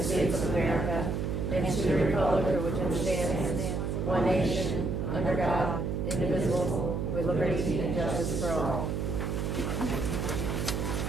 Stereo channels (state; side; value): noise; right; hum, 1 dB below the sound